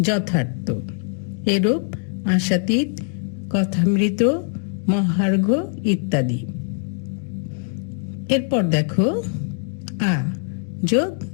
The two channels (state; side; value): silent; right; 55 dB below the other